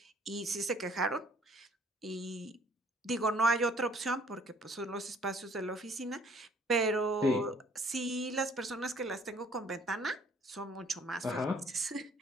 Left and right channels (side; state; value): both; normal; correlation 0.59